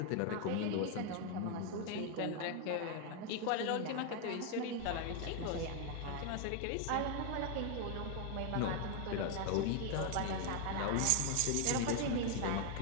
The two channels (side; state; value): both; different; correlation 0.00